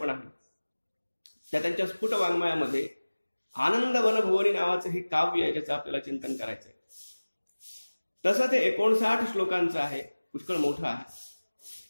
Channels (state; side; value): inverted; both; correlation -1.00